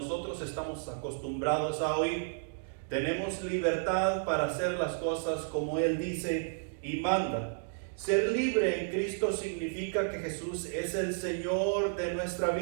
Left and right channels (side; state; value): left; silent; digital silence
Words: estamos acostumbrados a oír. Tenemos libertad para hacer las cosas como Él dice y manda. Ser libre en Cristo significa que Jesús es el Señor de nuestra